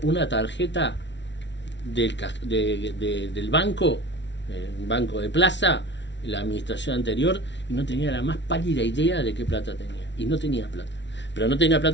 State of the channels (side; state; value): right; late; 0.52 ms